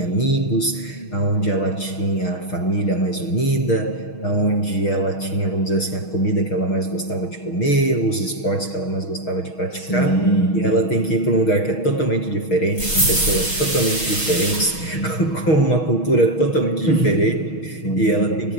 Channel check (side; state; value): right; late; 6.3 ms